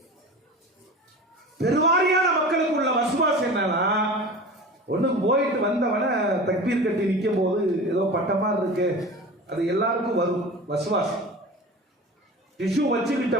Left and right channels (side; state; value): both; normal; correlation 0.35